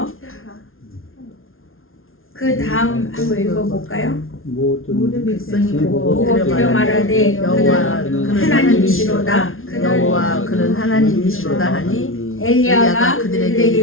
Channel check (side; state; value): right; late; 0.61 ms